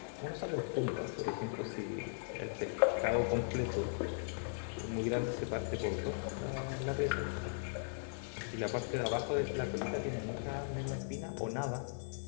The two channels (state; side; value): silent; right; 52 dB below the other